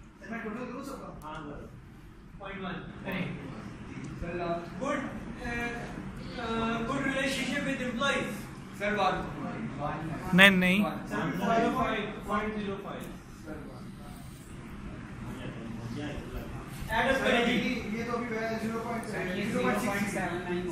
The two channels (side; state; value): both; identical; correlation 1.00